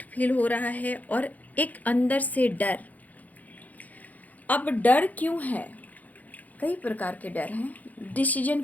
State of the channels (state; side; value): late; right; 0.078 ms